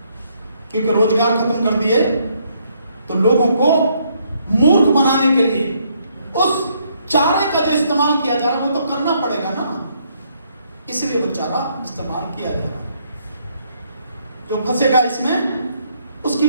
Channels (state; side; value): inverted; both; correlation -0.71